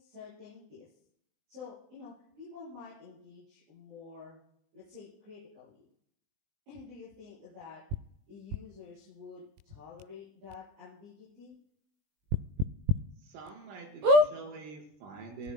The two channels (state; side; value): late; left; 20 ms